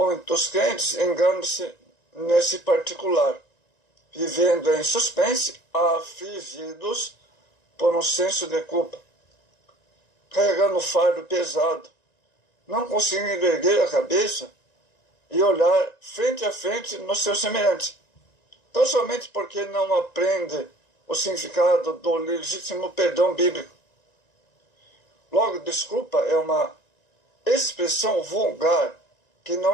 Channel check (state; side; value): late; right; 1.9 ms